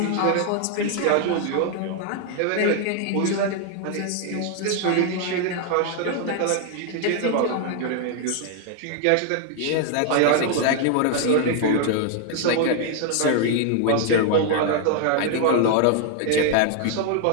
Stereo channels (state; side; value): different; both; correlation 0.00